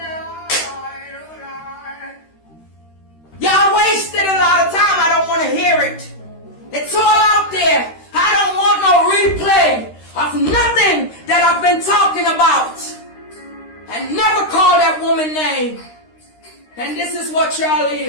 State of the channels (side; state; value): right; late; 13 ms